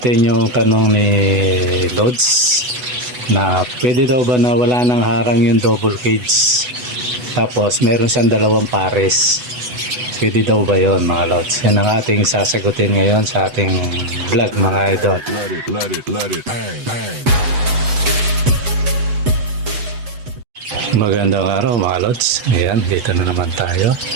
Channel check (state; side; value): late; left; 8.1 ms